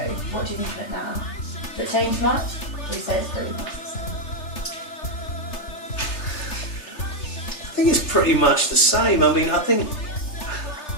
What do you think of it now? Has it changed much? Or you say it's pretty much the same? I think it's pretty much the same. I mean, I think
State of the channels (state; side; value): late; right; 3.3 ms